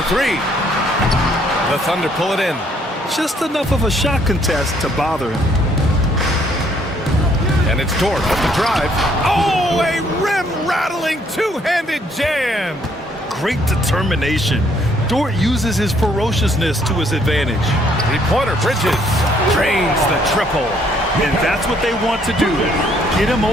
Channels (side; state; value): both; normal; correlation 0.66